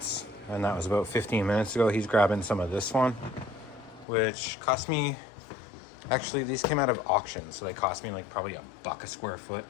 and that was about 15 minutes ago. He's grabbing some of this one, which cost me, actually these came out of auction, so they cost me like probably $1 a square foot,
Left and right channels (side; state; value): right; drops out; at 4.0 s